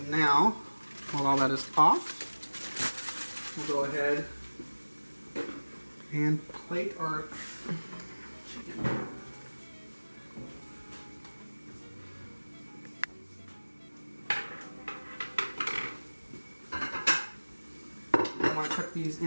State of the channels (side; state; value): both; inverted; correlation -1.00